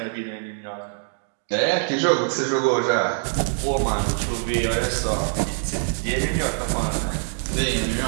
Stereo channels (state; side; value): silent; left; digital silence